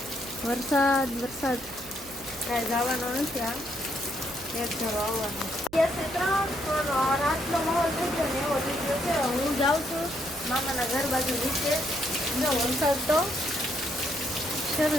વરસાદ કાંઈ જવાનો નથી. આ એક ધારો આવવાનો. રાતનો માહોલ થઈ ગયો ને એવો લીધો છે. હું જાઉં છું મામાના ઘર બાજુ નીચે. જો વરસાદ તો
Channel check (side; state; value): right; noise; hum, 21 dB below the sound